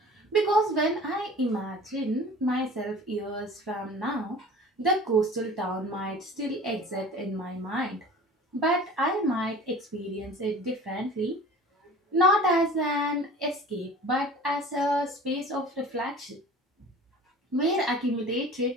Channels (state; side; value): normal; both; correlation 0.42